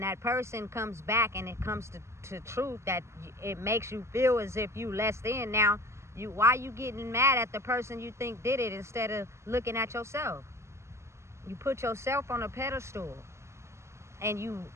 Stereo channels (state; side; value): late; left; 0.13 ms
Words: person comes back and it comes to truth, that it makes you feel as if you less than. Now, why you getting mad at the person you think did it instead of looking at yourself? You put yourself on a pedestal and you